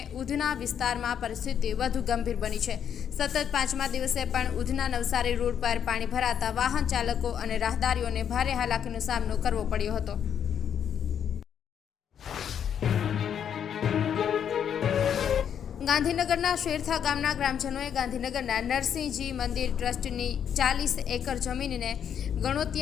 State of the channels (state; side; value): quieter; right; 8.6 dB